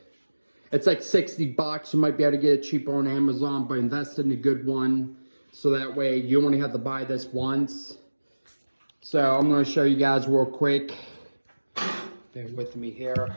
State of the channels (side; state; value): both; inverted; correlation -1.00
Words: It's like 60 bucks. You might be able to get it cheaper on Amazon, but invest in a good one. So that way you only have to buy this once. So I'm going to show you guys real quick. Bear with me here.